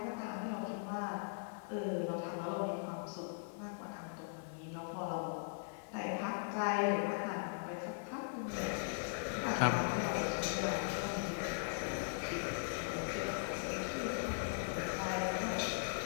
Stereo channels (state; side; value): silent; right; 51 dB below the other